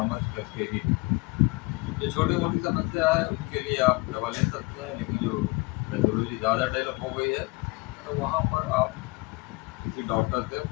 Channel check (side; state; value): right; quieter; 26.1 dB